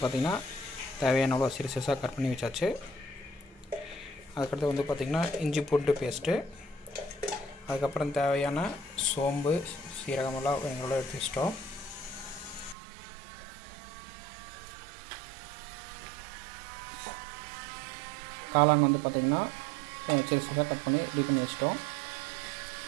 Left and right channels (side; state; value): left; drops out; at 12.8 s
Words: பார்த்திங்கன்னா தேவையான அளவு சிறுசாக கட் பண்ணி வச்சாச்சு. அதுக்கடுத்து வந்து பார்த்திங்கன்னா இஞ்சி பூண்டு பேஸ்ட்டு, அதுக்கப்புறம் தேவையான சோம்பு சீரகமெல்லாம் எங்களோட எடுத்து வச்சிட்டோம். காளான் வந்து பார்த்திங்கன்னா சிறுசாக கட் பண்ணி ரெடி பண்ணி வச்சிட்டோம்.